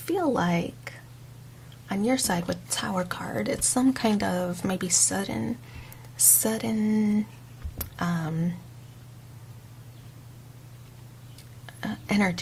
feel like on your side with the Tower card, it's some kind of maybe sudden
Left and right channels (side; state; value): both; identical; correlation 1.00